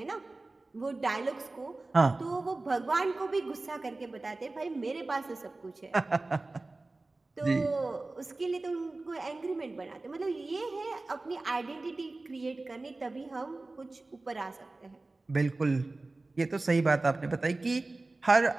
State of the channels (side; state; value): left; quieter; 3.2 dB